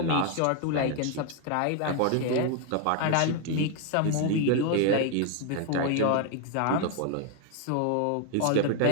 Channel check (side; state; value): both; different; correlation 0.00